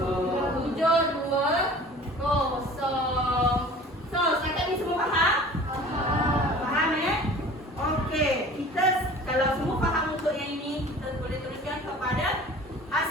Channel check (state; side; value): normal; both; correlation 0.44